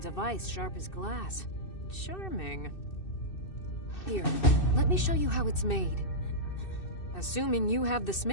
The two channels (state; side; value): late; right; 2.6 ms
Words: of ice sharp as glass. Charming. Here, let me show you how it's made. Assuming you have the